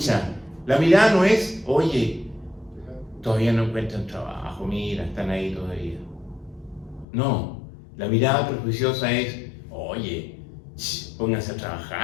la mirada no es, oye, todavía no encuentran trabajo, mira, están ahí todavía. No, la mirada prejuiciosa es, oye, pónganse a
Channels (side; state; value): right; drops out; at 7.1 s